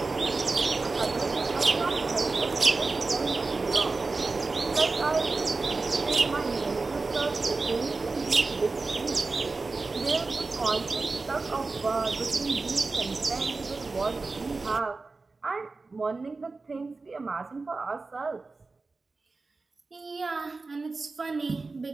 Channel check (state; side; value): quieter; left; 3.8 dB